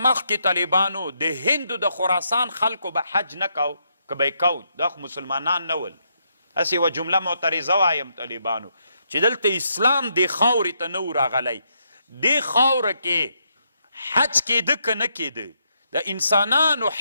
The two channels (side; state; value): both; inverted; correlation -0.78